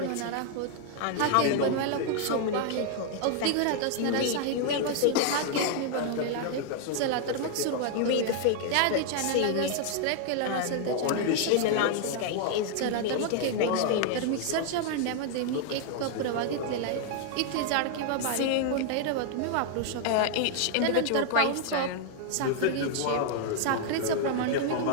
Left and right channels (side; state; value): both; different; correlation 0.00